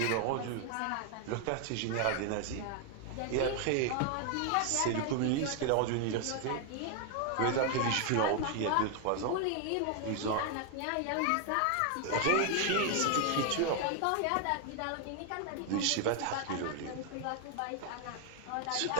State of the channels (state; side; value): different; both; correlation 0.00